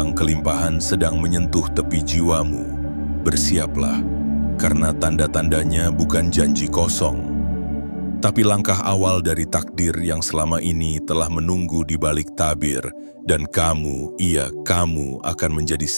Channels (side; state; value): both; inverted; correlation -1.00